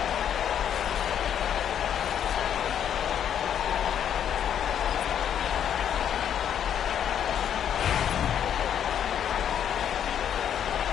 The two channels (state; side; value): quieter; right; 9.2 dB